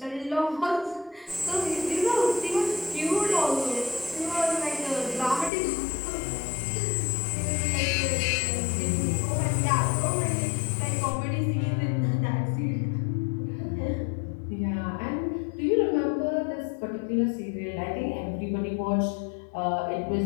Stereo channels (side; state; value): right; drops out; at 5.5 s